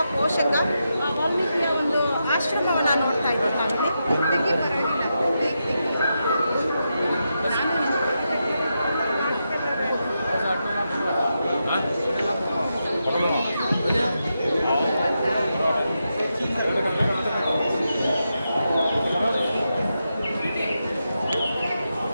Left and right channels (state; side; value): inverted; both; correlation -0.86